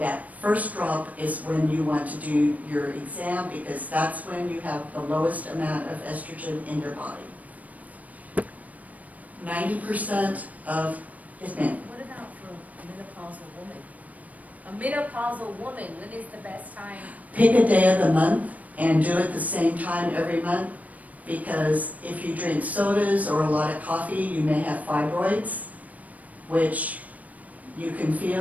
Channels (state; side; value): late; left; 0.072 ms